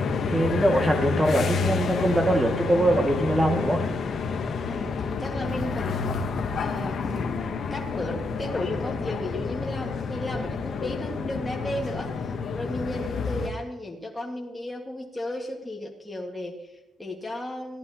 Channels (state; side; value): normal; both; correlation 0.81